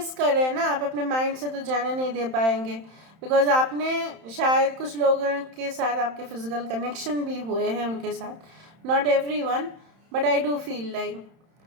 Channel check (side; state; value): left; late; 31 ms